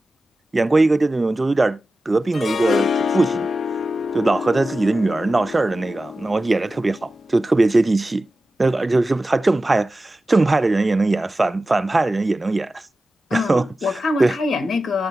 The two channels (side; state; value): both; normal; correlation 0.94